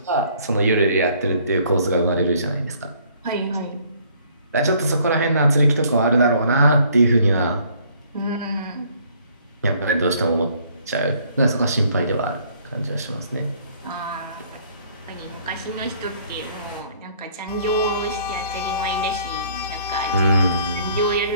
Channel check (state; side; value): inverted; both; correlation -0.60